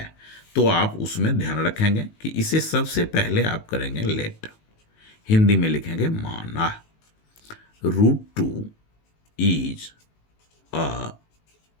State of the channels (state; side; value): late; right; 19 ms